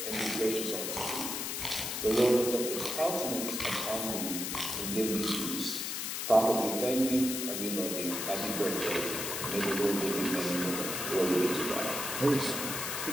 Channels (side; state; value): left; noise; hiss, 3 dB below the sound